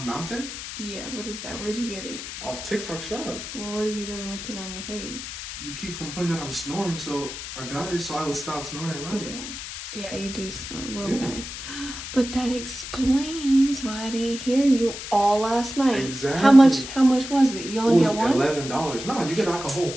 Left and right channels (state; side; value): noise; left; hiss, 9 dB below the sound